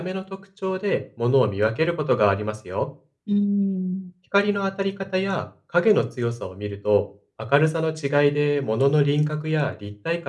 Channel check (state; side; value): identical; both; correlation 1.00